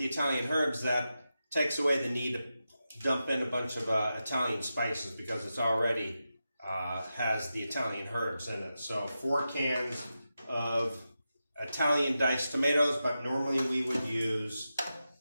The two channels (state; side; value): inverted; both; correlation -0.90